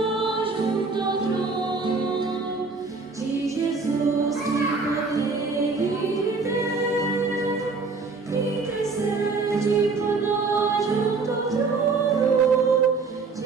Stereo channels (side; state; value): left; quieter; 4.3 dB